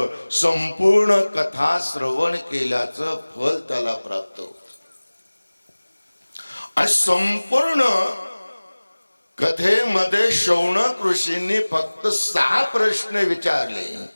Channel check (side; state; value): both; inverted; correlation -1.00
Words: संपूर्ण कथा श्रवण केल्याचं फल त्याला प्राप्त होत. आणि संपूर्ण कथेमध्ये शौनक ऋषींनी फक्त 6 प्रश्न विचारले